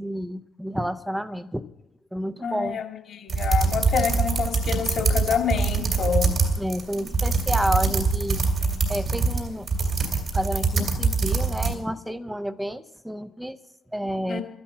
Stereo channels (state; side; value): normal; both; correlation 0.78